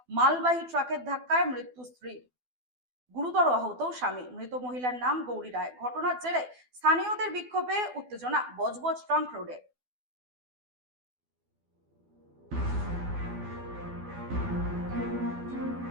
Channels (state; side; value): late; left; 12 ms